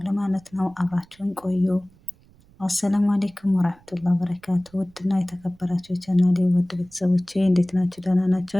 ማለት ነው። አብራችሁን ቆዩ። አሰላሙ አሌይኩም ወራህመቱላሂ ወበረካቱ። ውድና የተከበራችሁ የቻናሌ ውድ ቤተሰቦቼ እንዴት ናችሁ? ደህና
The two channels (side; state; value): right; noise; rumble, 29 dB below the sound